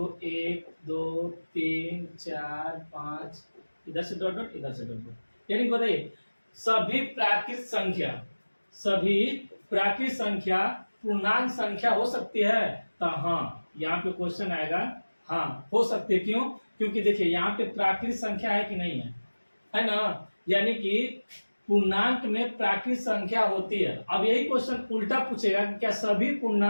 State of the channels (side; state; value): both; inverted; correlation -1.00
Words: 1 2 3 4 5, इधर से डॉट डॉट इधर से डॉट डॉट। यानी बताइए सभी प्राकृत संख्या पूर्णांक संख्या हो सकती है? तो हाँ, यहाँ पे क्वेश्चन आएगा हाँ हो सकती है। क्यों? क्योंकि देखिए यहाँ पे प्राकृत संख्या है कि नहीं है ना। यानी कि पूर्णांक में प्राकृत संख्या होती है। अब यही क्वेश्चन उल्टा पूछेगा कि क्या सभी